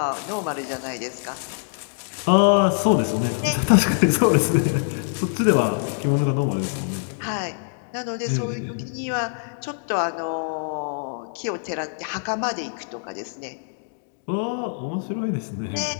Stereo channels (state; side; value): silent; right; digital silence